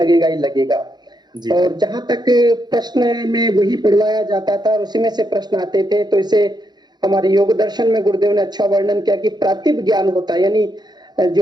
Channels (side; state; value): left; late; 0.20 ms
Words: ही लगेगा। और जहां तक प्रश्न में वही पढ़वाया जाता था और उसी में से प्रश्न आते थे, तो इसे हमारे योग दर्शन में गुरुदेव ने अच्छा वर्णन किया कि प्रातिभ ज्ञान होता है, यानी